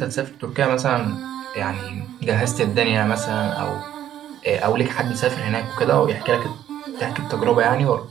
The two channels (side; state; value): left; quieter; 11.3 dB